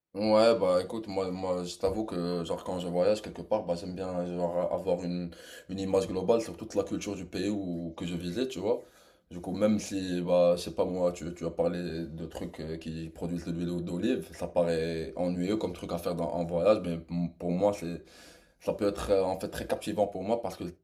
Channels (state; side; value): identical; both; correlation 1.00